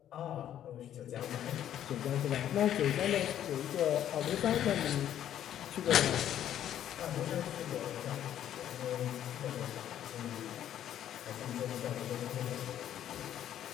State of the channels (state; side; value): quieter; right; 10.9 dB